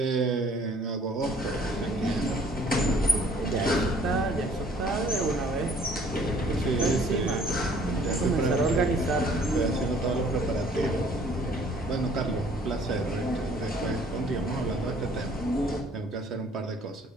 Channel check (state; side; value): normal; both; correlation 0.57